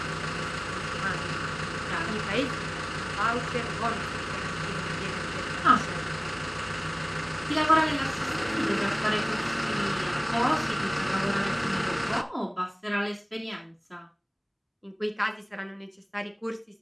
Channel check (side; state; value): both; identical; correlation 1.00